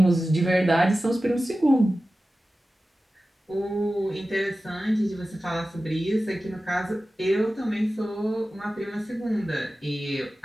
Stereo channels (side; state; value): both; normal; correlation 0.95